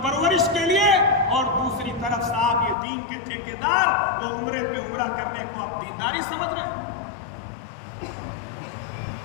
پرورش کے لیے، اور دوسری طرف صاحب یہ دین کے ٹھیکیدار وہ عمرے پہ عمرہ کرنے کو آپ دینداری سمجھ رہے ہیں۔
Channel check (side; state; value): right; drops out; at 2.8 s